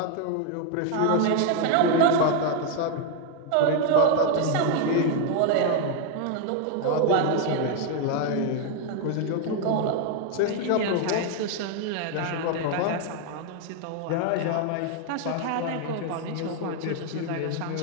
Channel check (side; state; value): both; different; correlation 0.00